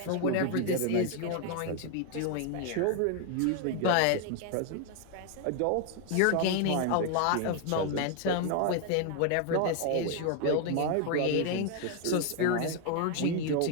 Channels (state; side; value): different; both; correlation 0.00